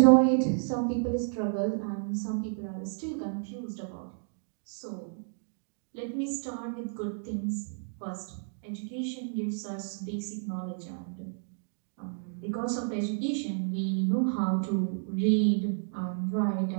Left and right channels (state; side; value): silent; left; digital silence